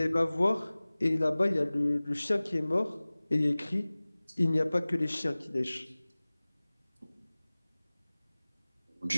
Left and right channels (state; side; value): inverted; both; correlation -0.99